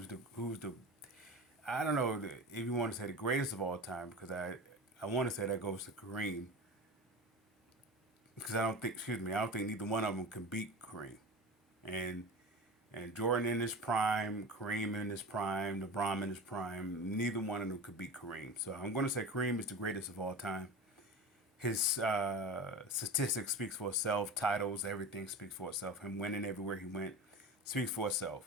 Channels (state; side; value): normal; both; correlation 0.30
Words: the I don't know if you want to say the greatest of all time because I want to say that goes to Kareem because I don't think neither one of them can beat Kareem. And and Jordan in his prime, Kareem in his prime, LeBron in his prime, neither one of them could beat Kareem. So I'm going to say Kareem is the greatest of all time. His statistics speaks for itself. Titles, everything speaks for itself. Him winning everywhere he went speaks for